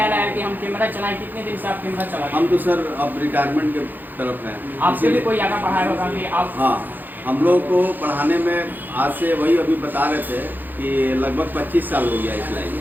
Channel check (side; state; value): left; late; 0.087 ms